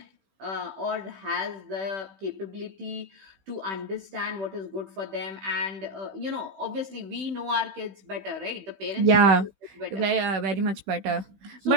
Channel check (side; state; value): left; late; 15 ms